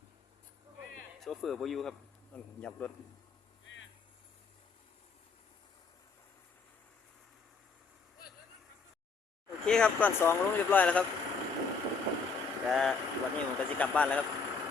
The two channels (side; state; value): right; quieter; 4.8 dB